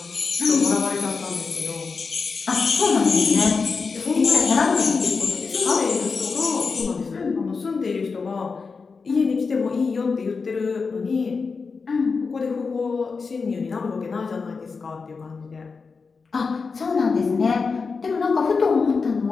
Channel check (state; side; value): quieter; right; 4.8 dB